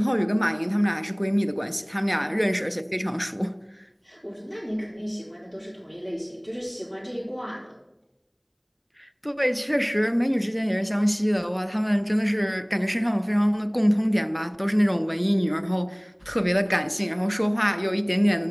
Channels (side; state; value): both; identical; correlation 1.00